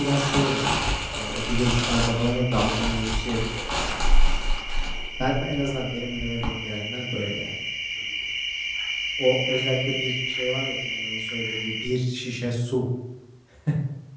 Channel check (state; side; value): identical; both; correlation 1.00